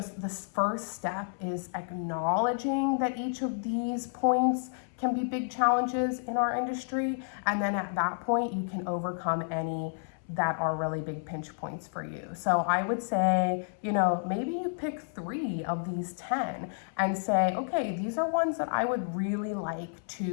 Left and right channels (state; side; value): silent; right; 57 dB below the other